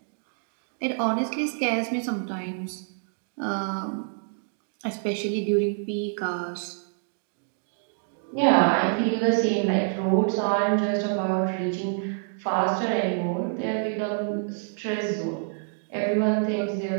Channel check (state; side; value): silent; left; digital silence